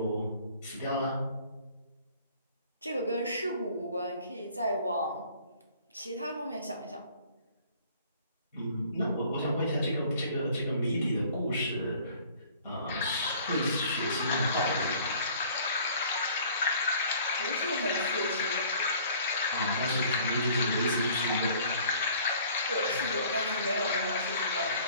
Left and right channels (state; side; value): inverted; both; correlation -0.52